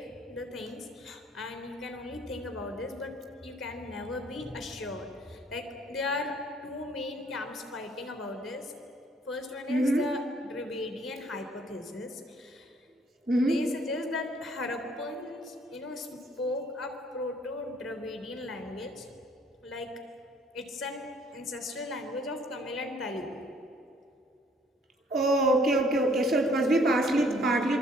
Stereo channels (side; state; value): both; normal; correlation 0.61